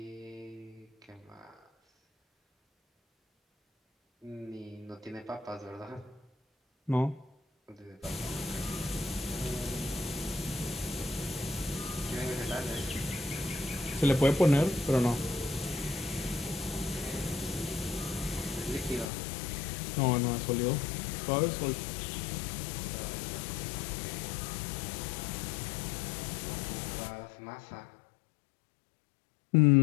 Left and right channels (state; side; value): drops out; right; at 19.1 s